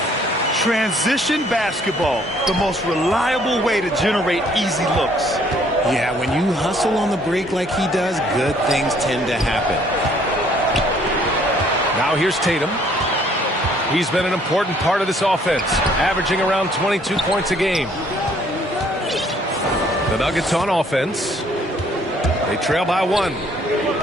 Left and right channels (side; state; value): both; normal; correlation 0.62